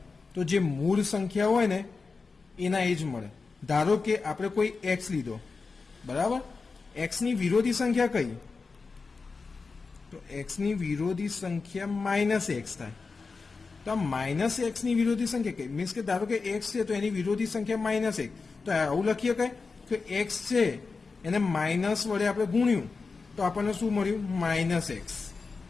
તો જે મૂળ સંખ્યા હોય ને એના એ જ મળે. ધારો કે આપણે કોઈ x લીધો બરાબર. x ની વિરોધી સંખ્યા કઈ તો x ની વિરોધી સંખ્યા -x થાય. તો આ -x ની વિરોધી સંખ્યા કઈ મીન્સ કે ધારો કે x છે તો એની વિરોધી સંખ્યા -1. તો આવું લખીએ કઈ કે x છે એને માઇનસ વડે આપણે ગુણ્યું તો આપણને શું મળ્યું -x.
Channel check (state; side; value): quieter; right; 4.4 dB